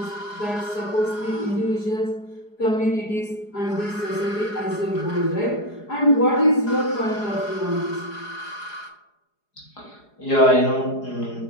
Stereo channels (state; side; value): late; right; 4.8 ms